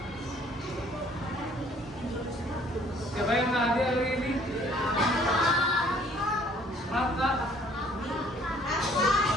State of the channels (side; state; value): both; normal; correlation 0.59